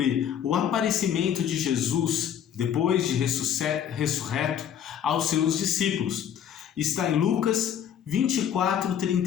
o aparecimento de Jesus depois de ressurreto aos seus discípulos. Está em Lucas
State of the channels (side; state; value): right; quieter; 9.1 dB